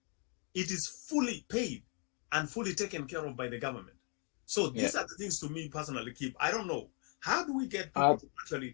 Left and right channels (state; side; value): quieter; right; 39.6 dB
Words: it is fully paid and fully taken care of by the government. So these are the things, to me personally, Keep. I don't know. How do we get people to